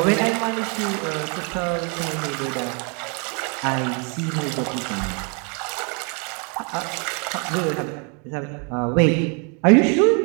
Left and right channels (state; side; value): quieter; left; 36.6 dB